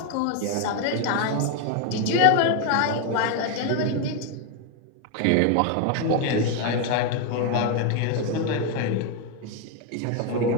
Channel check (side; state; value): both; different; correlation 0.01